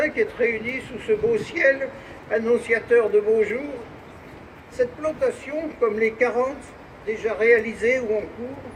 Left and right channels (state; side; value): identical; both; correlation 1.00